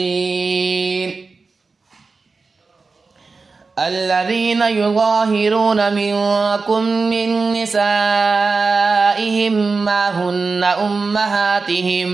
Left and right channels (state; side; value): quieter; left; 4.2 dB